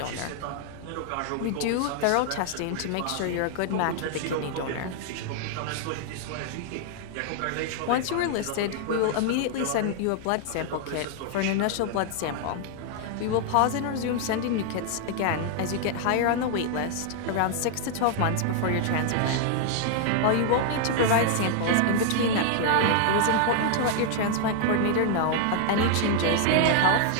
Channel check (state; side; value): different; both; correlation 0.00